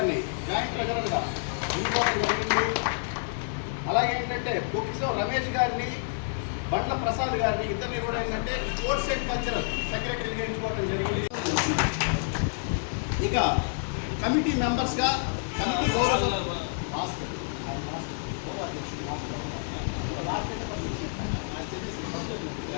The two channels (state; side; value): silent; right; 59 dB below the other